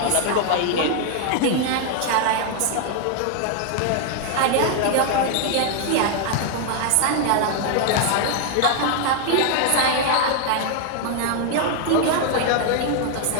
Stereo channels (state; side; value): different; both; correlation 0.00